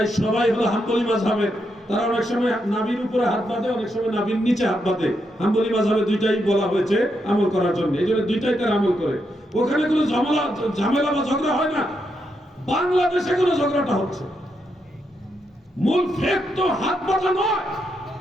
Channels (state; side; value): normal; both; correlation 0.81